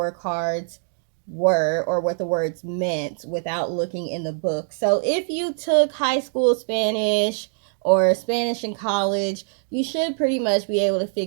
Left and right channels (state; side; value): silent; left; digital silence